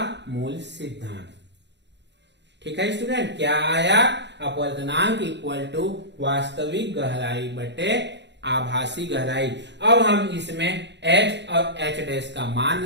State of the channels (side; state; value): left; late; 0.51 ms